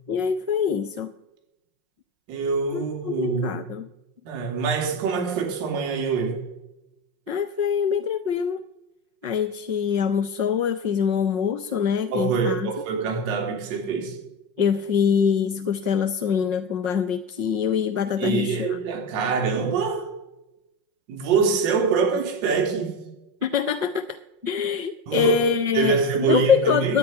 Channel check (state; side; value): late; left; 5.5 ms